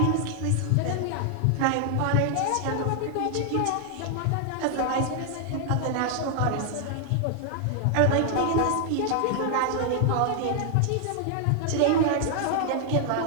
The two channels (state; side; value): different; both; correlation 0.00